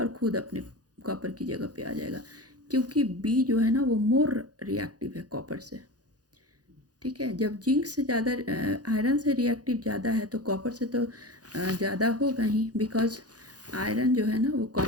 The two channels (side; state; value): left; late; 0.68 ms